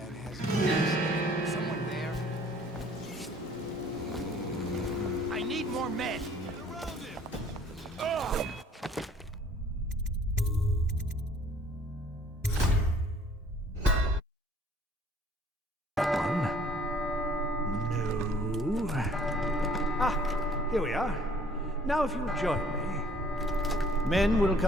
has keys. Someone there? I need more men! Get around him! Ugh! Here we are. Now if you'll join me. Men will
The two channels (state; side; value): normal; both; correlation 0.57